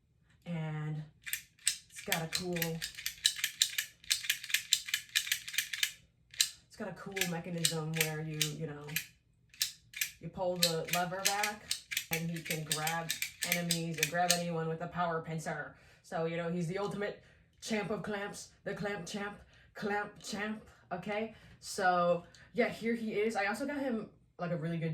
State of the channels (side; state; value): both; identical; correlation 1.00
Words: and it's got a cool mechanism where you pull the lever back and he can grab enemies or grab anyone with a power pincer. So, you know, he's the ultimate champ of clamps, the clamp champ, okay? So, yeah, here he is. I also got him like a really good